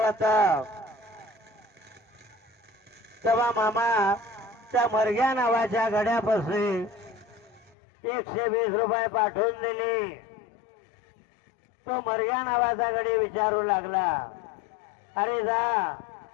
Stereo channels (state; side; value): drops out; right; at 7.8 s